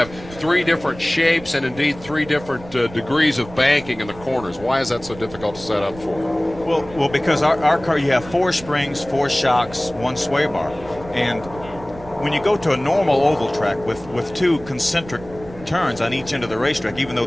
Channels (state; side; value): noise; right; rumble, 17 dB below the sound